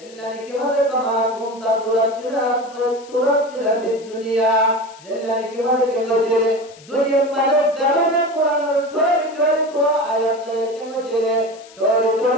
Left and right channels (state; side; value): noise; left; hiss, 23 dB below the sound